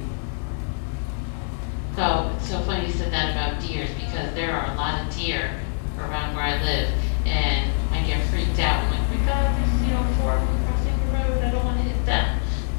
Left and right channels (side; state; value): right; silent; 56 dB below the other